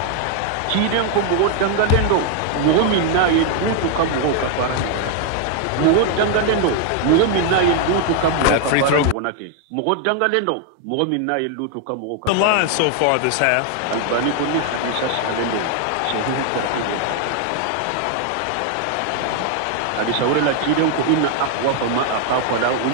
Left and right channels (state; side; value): different; both; correlation 0.00